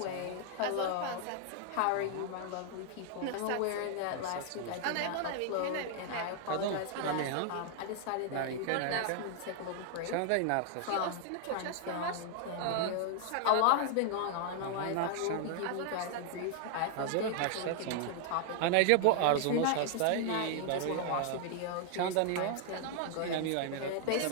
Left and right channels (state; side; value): different; both; correlation 0.00